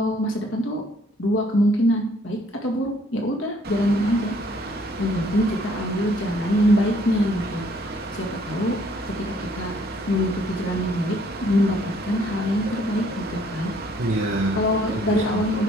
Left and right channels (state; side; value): normal; both; correlation 0.63